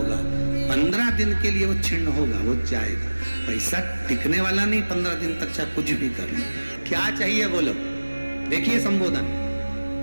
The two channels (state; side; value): inverted; both; correlation -1.00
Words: 15 दिन के लिए वो छिन्न होगा, वो जाएगा। पैसा टिकने वाला नहीं 15 दिन तक, चाहे कुछ भी कर लो। क्या चाहिए बोलो। देखिए संबोधन,